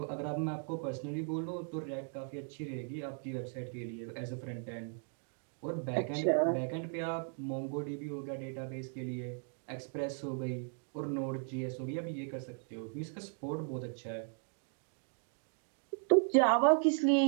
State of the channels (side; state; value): left; silent; 53 dB below the other